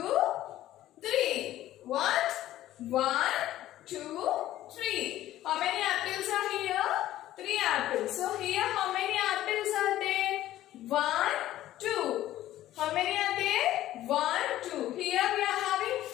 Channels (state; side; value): quieter; right; 14.0 dB